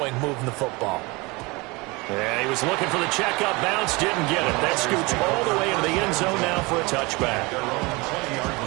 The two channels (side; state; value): left; quieter; 25.2 dB